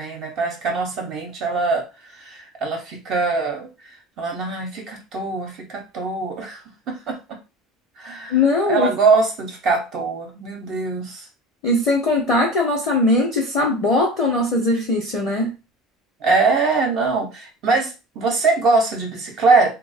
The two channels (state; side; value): normal; both; correlation 0.37